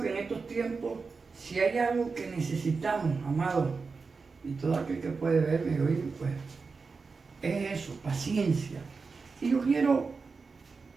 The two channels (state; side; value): quieter; left; 4.6 dB